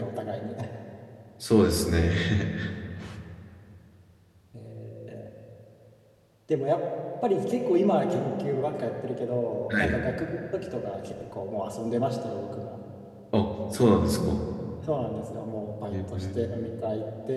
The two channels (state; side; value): identical; both; correlation 1.00